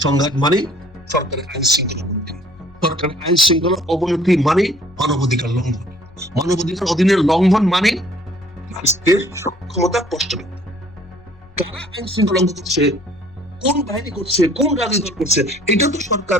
সংঘাত মানে সরকারের আইন শৃঙ্খলা অবনতি, সরকারের আইন শৃঙ্খলা অবনতি মানে মানবাধিকার লঙ্ঘন, মানবাধিকার অধীনের লঙ্ঘন মানে রাষ্ট্রের সক্ষমতা প্রশ্নবিদ্ধ। কারা আইন শৃঙ্খলা লঙ্ঘন করছে, কোন বাহিনী করছে, কোন রাজনৈতিক দল করছে, এটা তো সরকার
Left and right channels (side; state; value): left; noise; rumble, 27 dB below the sound